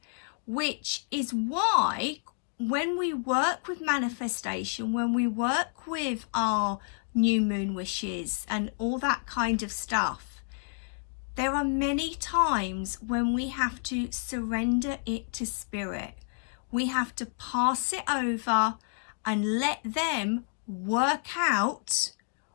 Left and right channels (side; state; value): right; silent; 58 dB below the other